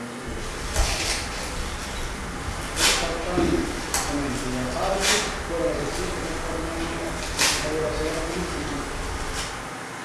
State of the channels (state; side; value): identical; both; correlation 1.00